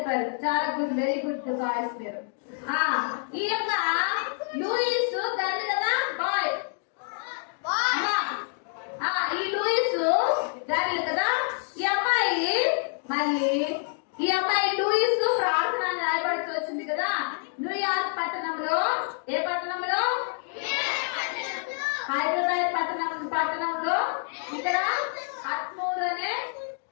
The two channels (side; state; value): right; silent; 56 dB below the other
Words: చాలా గుడ్, వెరీ గుడ్ బాయ్స్ పేరు. ఈ యొక్క లూయిస్ గర్ల్ కదా, బాయ్. ఈ లూయిస్ గర్ల్ కదా. ఈ అమ్మాయి లూయిస్ ప్రార్థన రాయబడుతూ వచ్చింది కదా. న్యూయార్క్ పట్టణంలో, ఏ పట్టణంలో? హైదరాబాద్ పట్టణంలో ఇక్కడ అత్మూర్ అనే